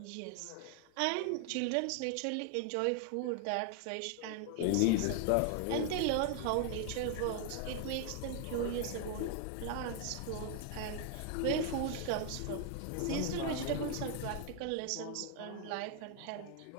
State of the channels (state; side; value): different; both; correlation 0.00